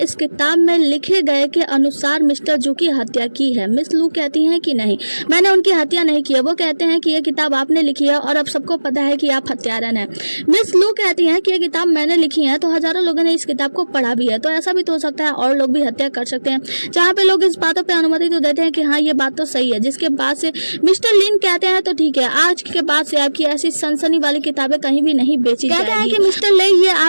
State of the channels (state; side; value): inverted; both; correlation -1.00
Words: किताब में लिखे गए के अनुसार मिस्टर जू की हत्या की है। मिस लू कहती हैं कि नहीं, मैंने उनकी हत्या नहीं की है। वो कहते हैं कि ये किताब आपने लिखी है और अब सबको पता है कि आप हत्यारन हैं। मिस लू कहती हैं कि ये किताब मैंने लिखी है तो हजारों लोगों ने इस किताब को पढ़ा भी है, तो ऐसा भी तो हो सकता है और लोग भी हत्या कर सकते हैं। जहाँ पे लोग इस बातों पे अनुमति तो देते हैं कि हाँ ये बात तो सही है। जिसके बाद से मिस्टर लिन कहते हैं तो ठीक है, आज के बाद से आपकी ऐसी सनसनी वाली किताबें कहीं भी नहीं बेची जाएगी। कहते हैं कि मिस्टर ले ये